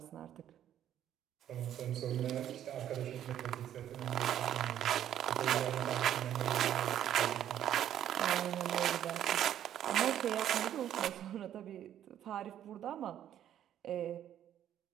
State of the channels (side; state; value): left; quieter; 10.9 dB